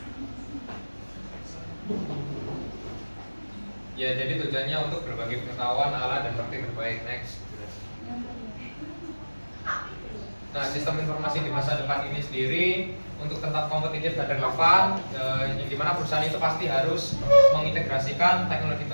Ya, jadi tujuannya untuk berbagi pengetahuan, alat, dan praktik terbaik. Next. Nah, sistem informasi di masa depan ini sendiri untuk tetap kompetitif dan relevan, yang dimana perusahaan itu pasti harus mengintegrasikan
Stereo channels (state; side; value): inverted; both; correlation -1.00